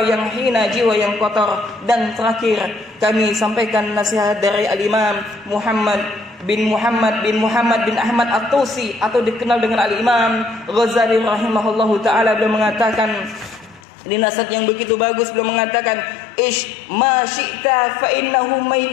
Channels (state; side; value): drops out; right; at 13.8 s